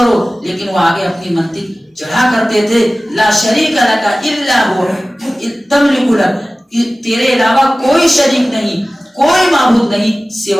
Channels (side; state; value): both; normal; correlation 0.97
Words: لیکن وہ آگے اپنی منطق چڑھا کرتے تھے، لا شریک لک الا هو تملک لک، تیرے علاوہ کوئی شریک نہیں، کوئی معبود نہیں